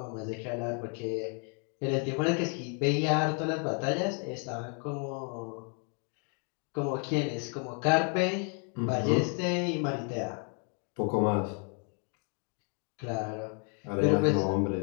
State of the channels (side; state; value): right; quieter; 40.0 dB